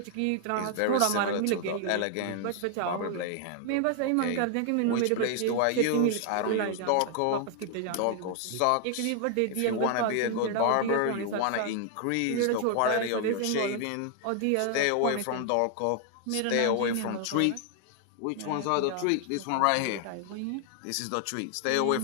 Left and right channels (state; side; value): different; both; correlation 0.00